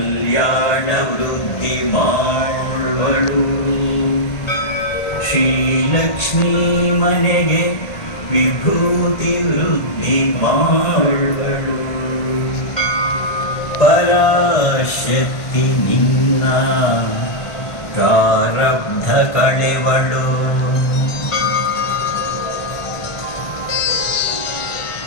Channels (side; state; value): right; late; 1.5 ms